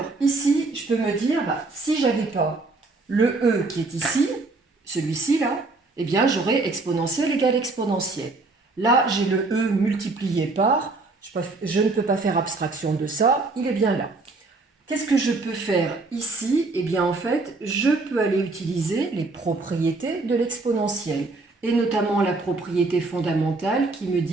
ici, je peux me dire, si je n'avais pas le e qui est ici, celui-ci là, eh bien j'aurais exponentielle égale exponentielle. Là, j'ai le e multiplié par, je ne peux pas faire abstraction de ça, il est bien là. Qu'est-ce que je peux faire ici? Eh bien en fait, je peux aller utiliser les propriétés de l'exponentielle, et notamment la propriété fondamentale qui me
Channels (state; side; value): quieter; left; 3.5 dB